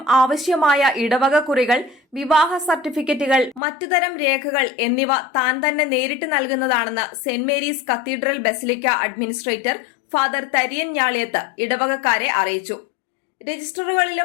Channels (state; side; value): drops out; right; at 3.6 s